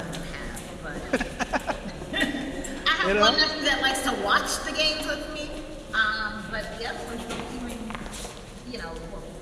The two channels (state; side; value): identical; both; correlation 1.00